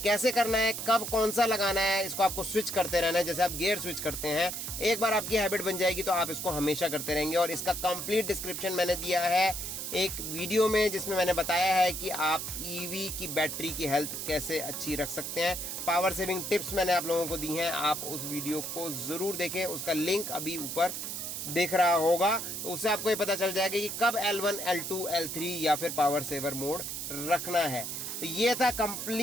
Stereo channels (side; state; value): right; noise; hiss, 5 dB below the sound